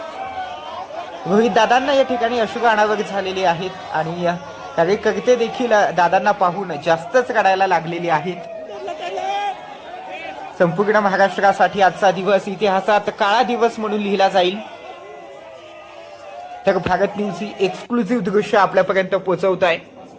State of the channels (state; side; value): identical; both; correlation 1.00